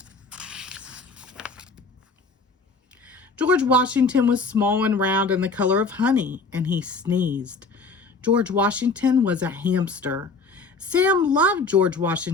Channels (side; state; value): right; quieter; 4.0 dB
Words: George Washington was small and round and the color of honey, and he sneezed. George Washington was a hamster. Sam loved George